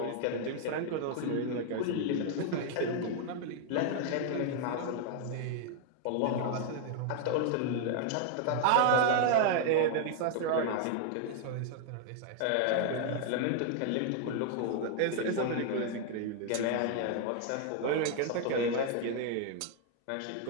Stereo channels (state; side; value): different; both; correlation 0.00